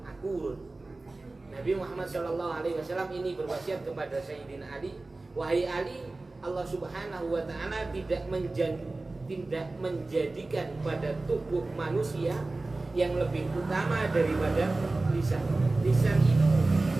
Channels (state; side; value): quieter; left; 3.2 dB